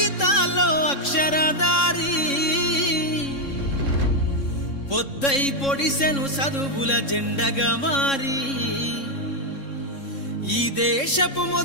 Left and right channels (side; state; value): right; late; 3.6 ms